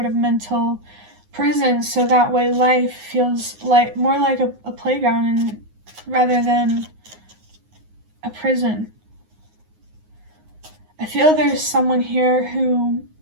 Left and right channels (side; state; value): left; late; 9.5 ms